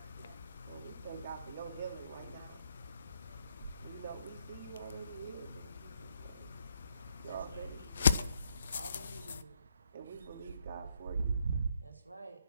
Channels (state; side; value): inverted; both; correlation -0.75